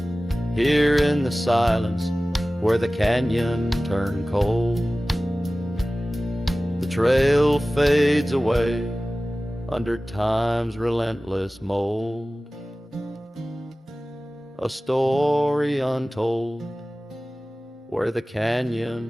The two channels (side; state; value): both; normal; correlation 0.97